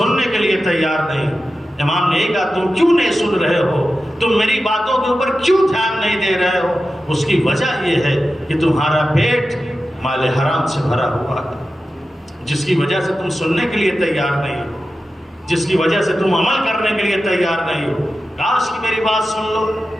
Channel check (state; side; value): normal; both; correlation 0.93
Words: کے لیے تیار نہیں۔ امام نے کہا تم کیوں نہیں سن رہے ہو، تم میری باتوں کے اوپر کیوں دھیان نہیں دے رہے ہو؟ اس کی وجہ یہ ہے کہ تمہارا پیٹ مال حرام سے بھرا ہوا ہے، جس کی وجہ سے تم سننے کے لیے تیار نہیں ہو، جس کی وجہ سے تم عمل کرنے کے لیے تیار نہیں ہو۔ کاش کہ میری بات سن لو۔